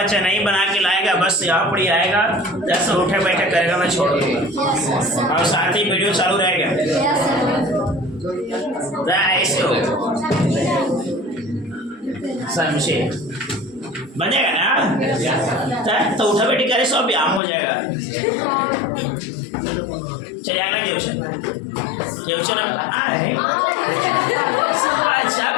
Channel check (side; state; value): right; drops out; at 17.4 s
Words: नहीं बना के लाएगा बस यहाँ पर ही आएगा, जैसे उठे बैठे करेगा, मैं छोड़ दूंगा और साथ ही वीडियो चालू रहेगा। ऐसे हो समझे, बनेगा ना, तो उठा बैठी करे सब व्यायाम हो जाएगा। चलिए आना क्वेश्चन अच्छा